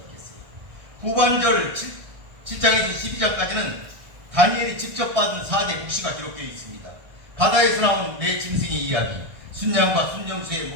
후반절 7장에서 12장까지는 다니엘이 직접 받은 4대 묵시가 기록되어 있습니다. 바다에서 나온 네 짐승의 이야기, 순양과 순정수의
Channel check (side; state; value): left; late; 1.6 ms